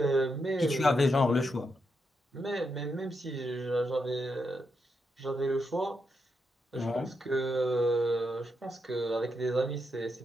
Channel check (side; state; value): both; normal; correlation 0.82